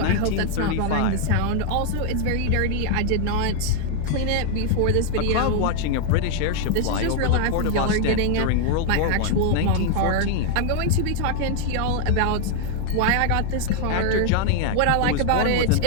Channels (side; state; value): both; different; correlation 0.00